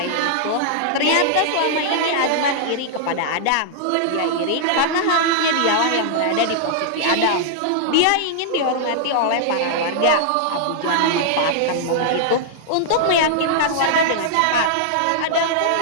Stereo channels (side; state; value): both; different; correlation -0.01